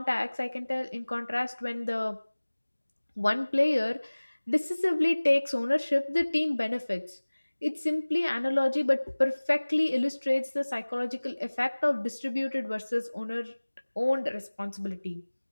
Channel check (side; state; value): both; inverted; correlation -1.00